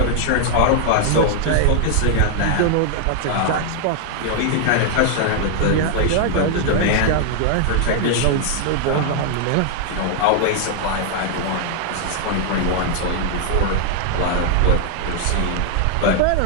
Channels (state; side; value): different; both; correlation 0.00